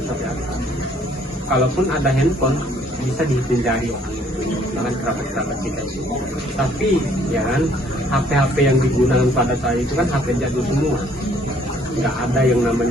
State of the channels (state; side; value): normal; both; correlation 0.62